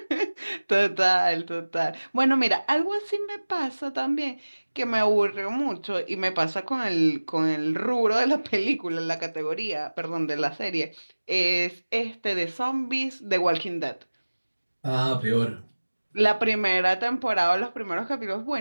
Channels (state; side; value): inverted; both; correlation -1.00